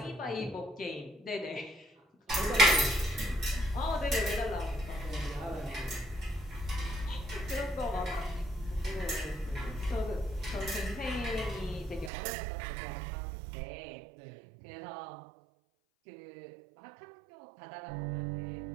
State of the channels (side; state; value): left; drops out; at 12.1 s